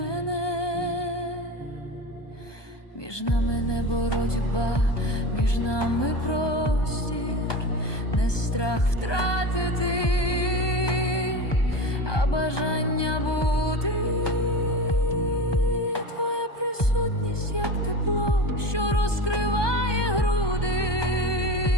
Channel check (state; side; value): late; right; 1.2 ms